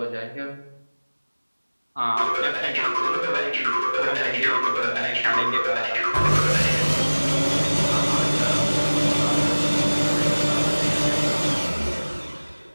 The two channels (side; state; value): both; inverted; correlation -1.00